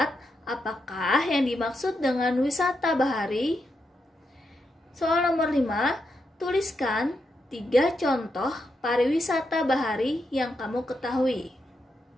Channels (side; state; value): both; normal; correlation 0.84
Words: apakah yang dimaksud dengan wisata bahari? Soal nomor 5, tuliskan 3 contoh pariwisata bahari yang kamu ketahui.